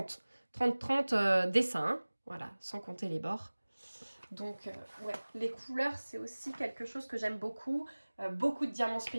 30-30 dessins, hein. Voilà, sans compter les bords. Donc, ouais, les couleurs, c'est aussi quelque chose que j'aime beaucoup. Beaucoup de diamants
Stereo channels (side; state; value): both; inverted; correlation -1.00